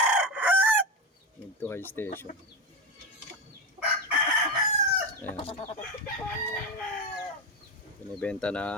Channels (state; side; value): normal; both; correlation 0.16